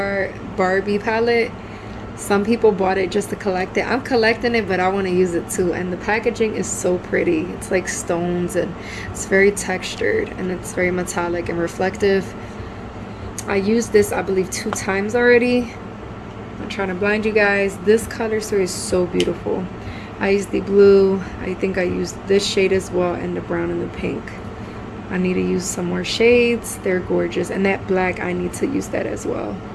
Barbie palette. Some people bought it just to collect it. I'm collecting it, but I want to use it too. And the packaging is so pretty. It's like stones, and it's very textured, and it's very metallic and reflective. I used this, I believe, 2 times already. I'm trying to blind you guys. This color story is so beautiful. I used the blue. I think I used this shade as well, and the brown and the pink. I need to use some more shades. They're gorgeous. And that black, I need to use that as well.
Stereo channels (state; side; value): identical; both; correlation 1.00